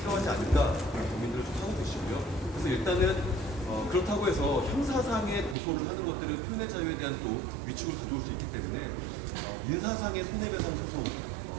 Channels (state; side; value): drops out; left; at 5.6 s